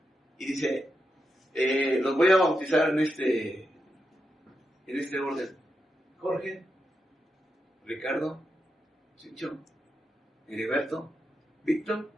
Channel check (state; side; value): normal; both; correlation 0.86